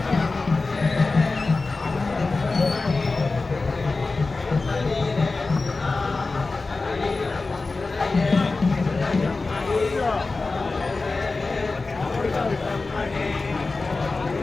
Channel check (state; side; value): quieter; right; 3.7 dB